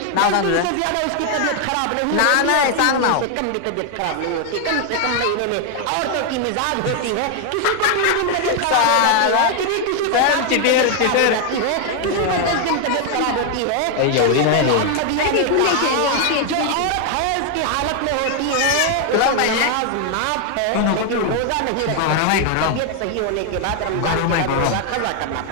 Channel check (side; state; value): both; different; correlation 0.00